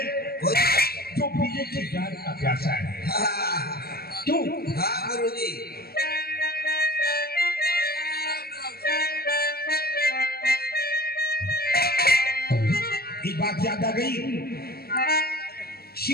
जो बीजे की जान का प्यासा है। क्यों? हाँ गुरुजी। एक बात याद आ गई,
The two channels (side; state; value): right; late; 0.45 ms